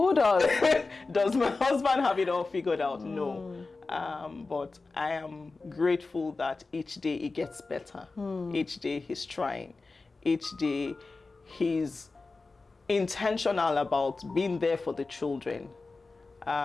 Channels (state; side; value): quieter; right; 3.7 dB